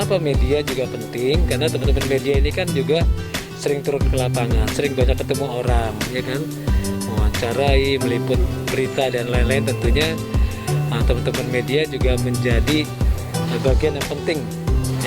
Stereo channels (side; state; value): both; identical; correlation 1.00